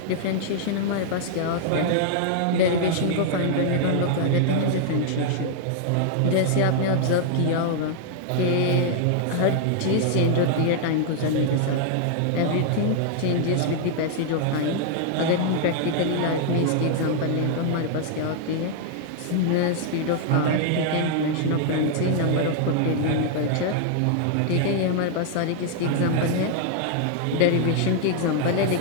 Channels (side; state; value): both; different; correlation -0.01